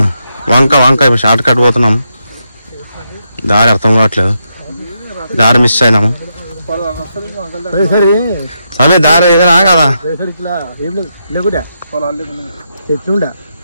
వంక వంక. ఇప్పుడు షార్ట్ కట్ పోతున్నాం. దారి అర్థం కావట్లేదు. దారి మిస్ అయినాము. అదే దారి ఏదైనా కదా.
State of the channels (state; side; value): inverted; both; correlation -0.82